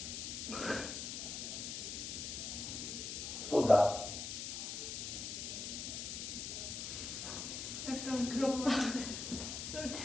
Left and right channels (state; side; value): noise; left; hiss, 5 dB below the sound